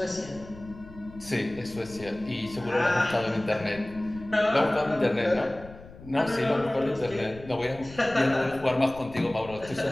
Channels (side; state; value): left; noise; rumble, 18 dB below the sound